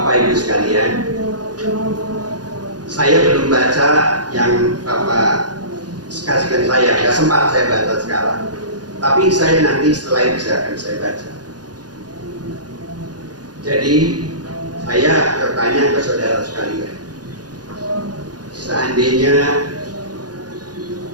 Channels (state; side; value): late; left; 0.69 ms